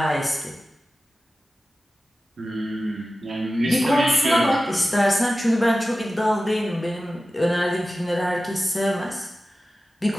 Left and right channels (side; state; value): both; normal; correlation 0.95